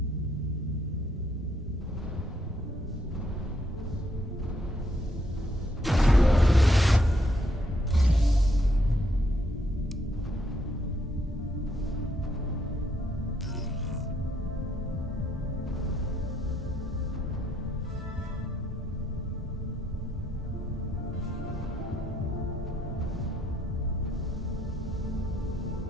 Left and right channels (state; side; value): normal; both; correlation 0.73